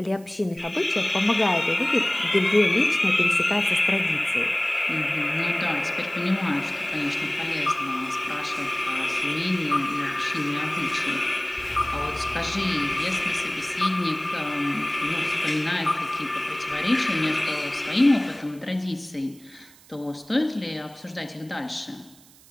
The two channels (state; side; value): noise; right; hiss, 25 dB below the sound